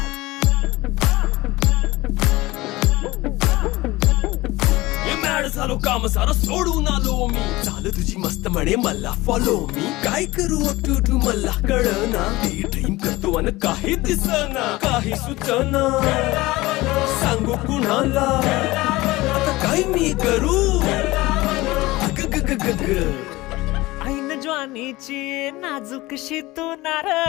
झालो काम सारा सोडून आलो मी झालं तुझी मस्त म्हणे मला फॉलो मी काय करू टू मला कळना ते ड्रीम करतो आणि काही दिसना काही सुचना सांगू कुणाला आता काय मी करू ऐन ज्वानीची नाजूकशी तू नार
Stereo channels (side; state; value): right; quieter; 19.9 dB